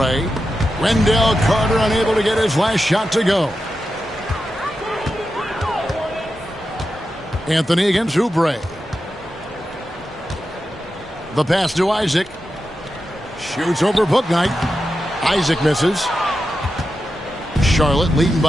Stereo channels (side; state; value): both; normal; correlation 0.90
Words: Wendell Carter unable to get his last shot to go. Anthony against Oubre. The pass to Isaac. Shoots over Bouknight. Isaac misses. Charlotte leading